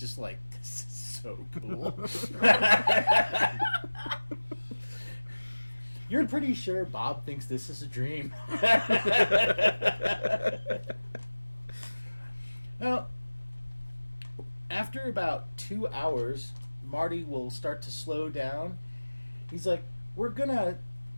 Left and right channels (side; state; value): both; inverted; correlation -1.00